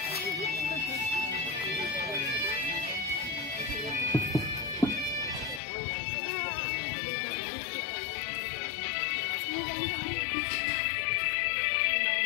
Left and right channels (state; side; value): drops out; right; at 5.6 s